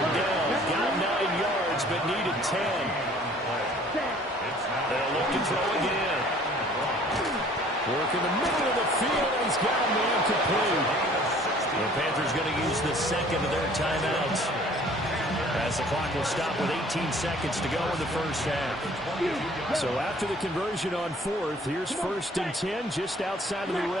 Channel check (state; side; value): normal; both; correlation 0.53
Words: down. Got 9 yards but needed 10. They'll look to throw again. Work in the middle of the field and he's got a man complete. The Panthers going to use the second of their timeouts. As the clock will stop with 18 seconds to go in the first half. So after the conversion on 4th, here's 1st and 10 just outside of the